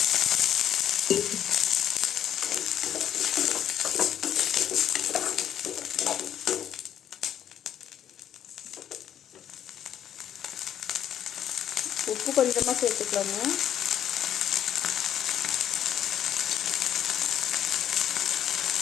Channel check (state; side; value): quieter; right; 10.2 dB